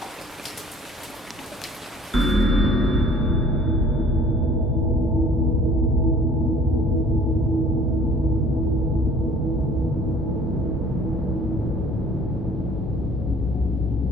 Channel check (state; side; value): normal; both; correlation 0.52